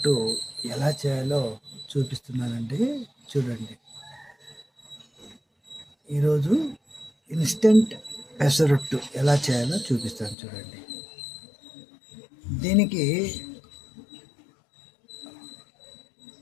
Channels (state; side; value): drops out; right; at 10.4 s